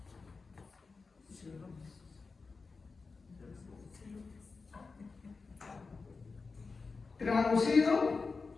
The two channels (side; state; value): right; quieter; 4.4 dB